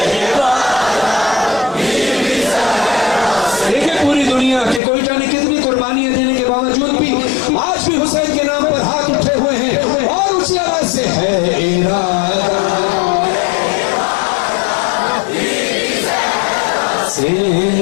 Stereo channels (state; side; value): drops out; right; at 4.8 s